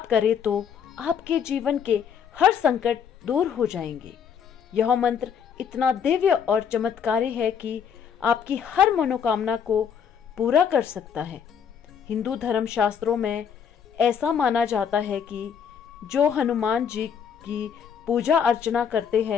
करें तो आपके जीवन के हर संकट दूर हो जाएंगे। यह मंत्र इतना दिव्य और चमत्कारी है कि आपकी हर मनोकामना को पूरा कर सकता है। हिंदू धर्म शास्त्रों में ऐसा माना जाता है कि जो हनुमान जी की पूजा अर्चना करते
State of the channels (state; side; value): quieter; right; 7.5 dB